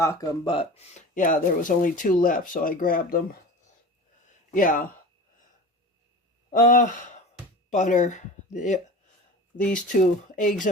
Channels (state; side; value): normal; both; correlation 0.34